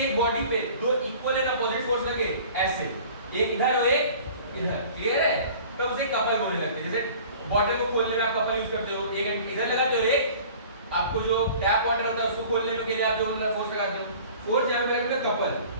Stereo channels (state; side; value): inverted; both; correlation -0.46